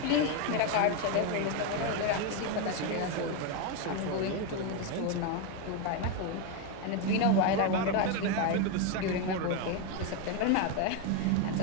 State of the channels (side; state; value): both; different; correlation 0.02